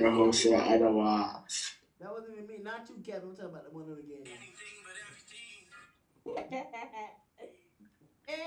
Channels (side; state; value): both; identical; correlation 1.00